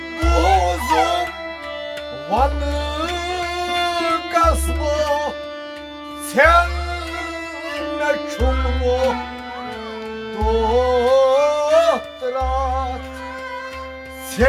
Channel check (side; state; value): both; identical; correlation 1.00